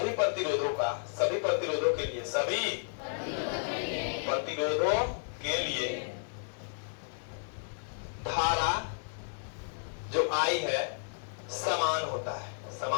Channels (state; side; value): silent; right; digital silence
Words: प्रतिरोधों का, सभी प्रतिरोधों के लिए, सभी प्रतिरोधों के लिए धारा जो आई है समान होता है,